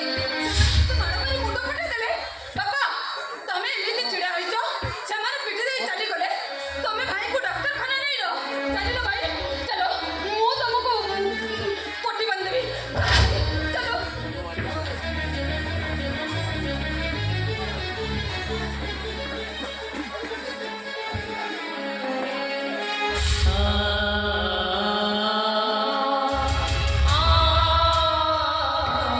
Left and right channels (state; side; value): identical; both; correlation 1.00